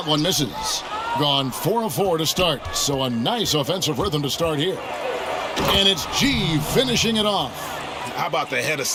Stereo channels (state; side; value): identical; both; correlation 1.00